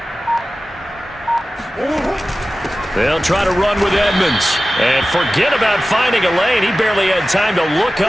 They'll try to run with Edmonds. And forget about finding a lane. He barely had time to look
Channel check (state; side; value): normal; both; correlation 0.95